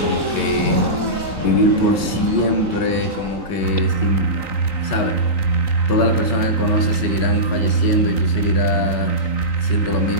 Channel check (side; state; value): right; late; 3.9 ms